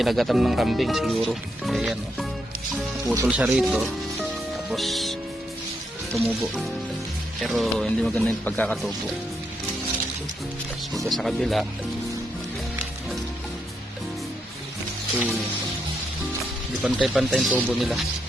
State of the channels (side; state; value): both; normal; correlation 0.80